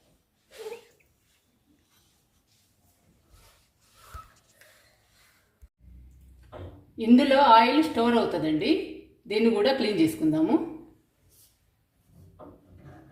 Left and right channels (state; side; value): identical; both; correlation 1.00